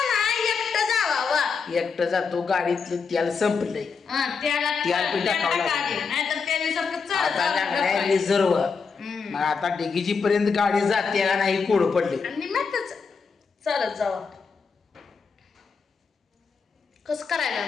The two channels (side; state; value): right; quieter; 5.3 dB